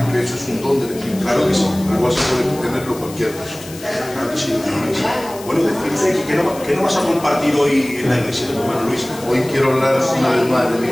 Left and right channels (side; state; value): left; noise; hiss, 17 dB below the sound